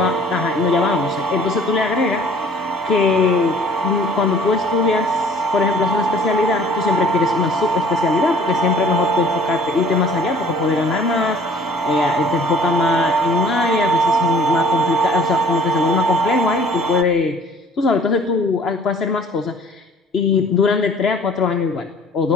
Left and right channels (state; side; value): normal; both; correlation 0.53